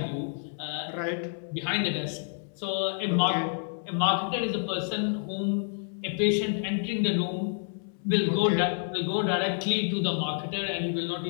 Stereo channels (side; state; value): right; silent; 59 dB below the other